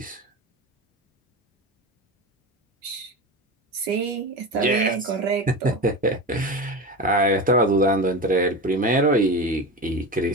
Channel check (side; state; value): both; normal; correlation 0.25